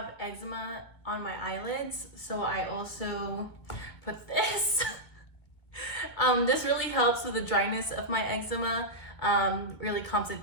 eczema on my eyelids, so I also put this. This really helps with the dryness of my eczema, really calms it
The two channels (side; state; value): right; late; 2.2 ms